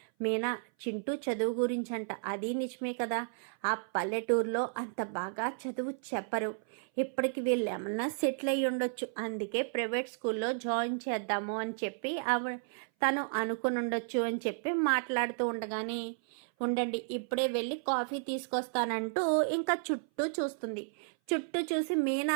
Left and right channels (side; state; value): left; silent; 56 dB below the other